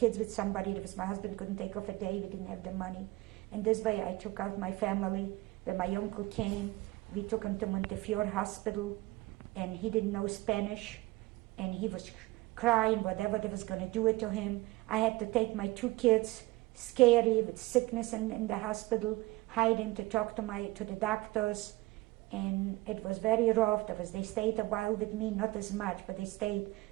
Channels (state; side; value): quieter; left; 20.4 dB